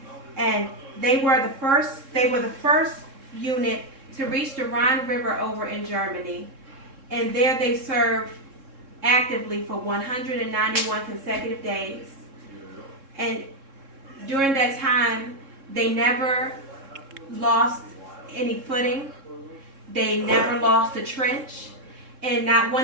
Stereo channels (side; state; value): left; late; 3.7 ms